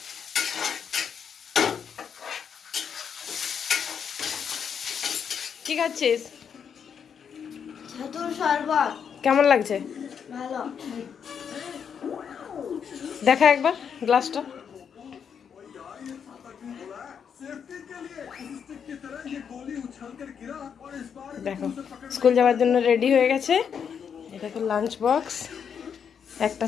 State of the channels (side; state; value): right; quieter; 7.3 dB